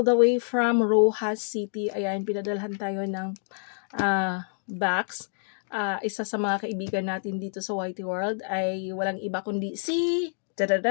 the way from Rojas City. Ayan, pinadalhan tayo ng box. Isa sa mga kaibigan natin dito sa Whitey World ay walang iba kundi si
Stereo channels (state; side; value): silent; right; digital silence